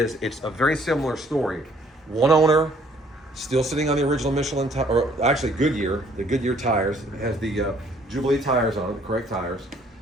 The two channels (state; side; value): normal; both; correlation 0.61